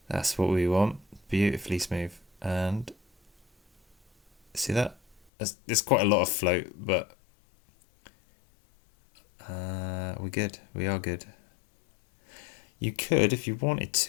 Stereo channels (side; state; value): right; drops out; at 5.2 s